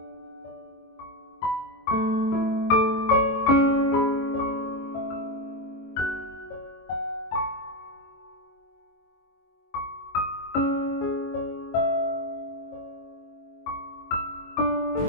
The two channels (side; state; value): right; late; 22 ms